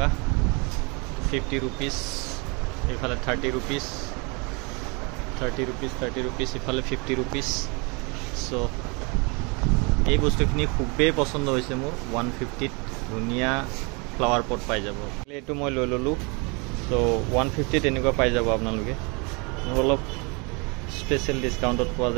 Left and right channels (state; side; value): quieter; left; 30.6 dB